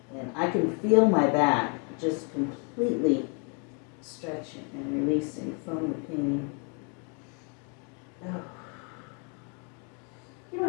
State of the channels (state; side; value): quieter; right; 37.3 dB